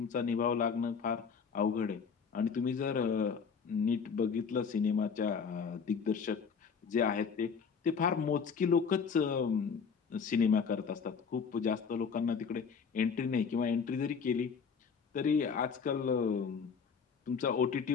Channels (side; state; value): right; quieter; 6.0 dB